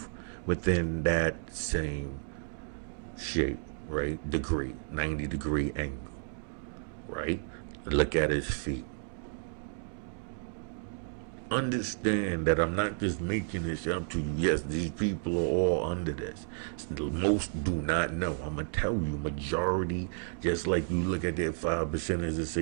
within that same shape, right? Degree, 90-degree angle, right? Look at his feet. Understand that I'm not just making this up to you. Yes, these people are all under this. Most do not know. I'm gonna tell you, majority, just like you look at that 5% as to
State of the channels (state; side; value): silent; left; digital silence